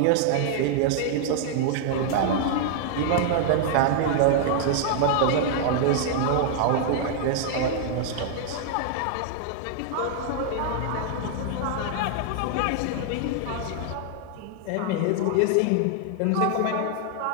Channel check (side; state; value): both; different; correlation 0.00